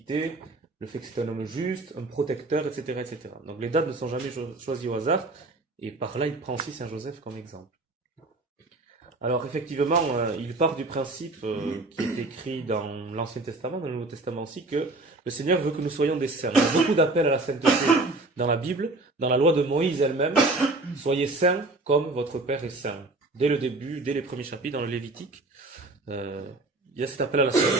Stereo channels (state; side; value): quieter; left; 3.0 dB